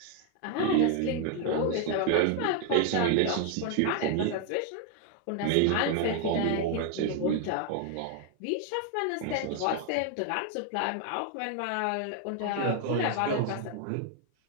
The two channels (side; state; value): both; different; correlation 0.00